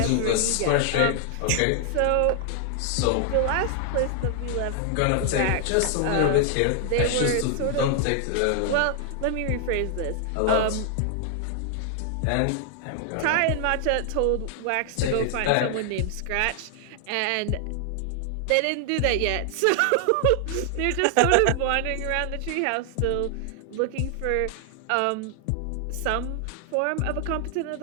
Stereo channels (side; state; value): both; different; correlation 0.00